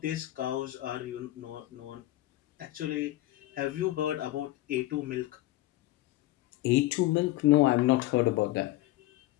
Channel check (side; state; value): right; quieter; 16.8 dB